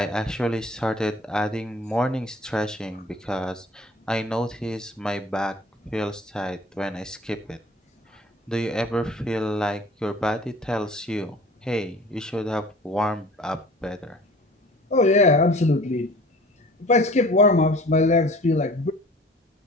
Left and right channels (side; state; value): both; normal; correlation 0.46